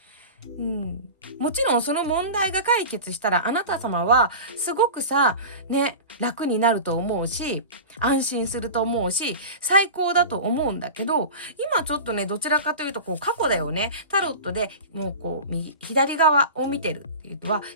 もちろんその問題が解決したら、あなた様はすごくさね、楽になると思うし、安心すると思うし、最高だと思うんだけど、今ちょっとねどちらかというとこう過去だよね。タロットでもうこう左側を見てるっていうのは、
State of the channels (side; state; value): both; inverted; correlation -0.31